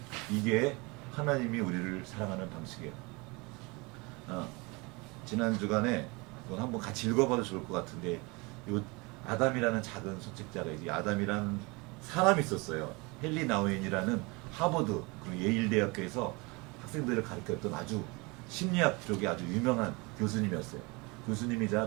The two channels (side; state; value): left; quieter; 26.7 dB